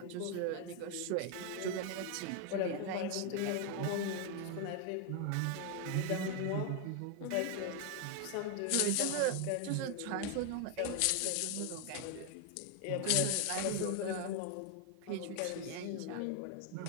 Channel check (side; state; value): both; different; correlation 0.01